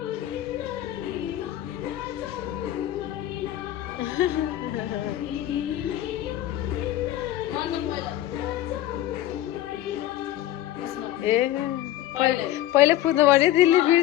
ए पहिले पुग्नु पर्यो दिल्ली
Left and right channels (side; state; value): right; quieter; 13.4 dB